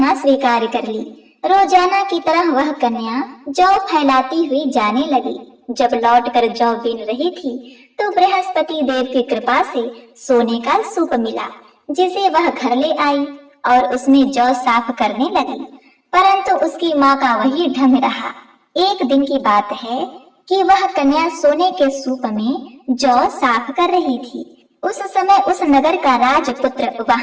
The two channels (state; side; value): identical; both; correlation 1.00